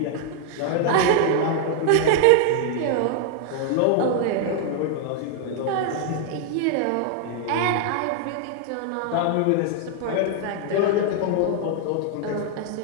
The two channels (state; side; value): different; both; correlation 0.00